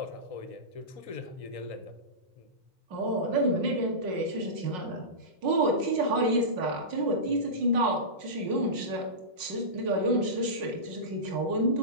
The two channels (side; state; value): left; late; 5.5 ms